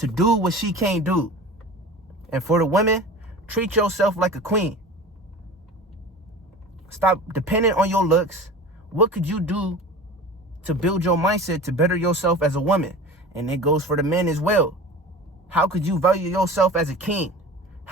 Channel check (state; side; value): normal; both; correlation 0.37